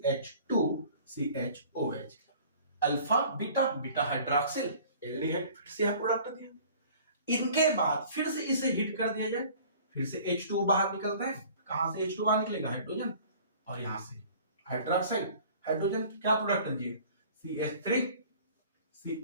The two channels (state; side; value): inverted; both; correlation -0.49